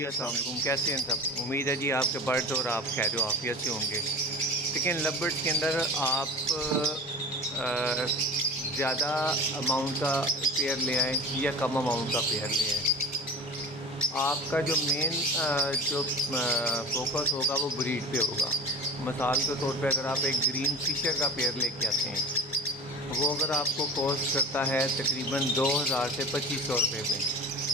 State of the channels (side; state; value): both; normal; correlation 0.34